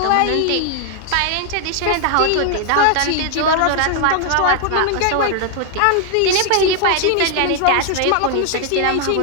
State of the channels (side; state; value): both; different; correlation 0.00